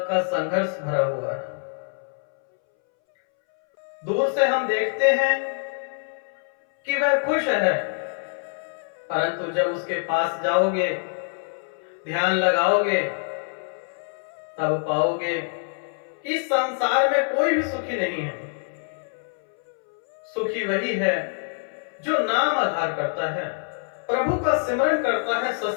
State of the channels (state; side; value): silent; right; 62 dB below the other